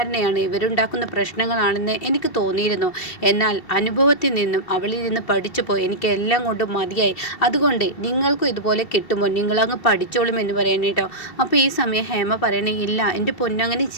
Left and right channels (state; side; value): late; right; 2.7 ms